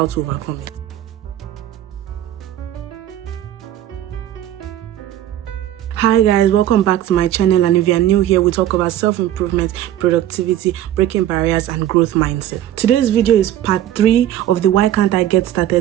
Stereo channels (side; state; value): left; quieter; 12.4 dB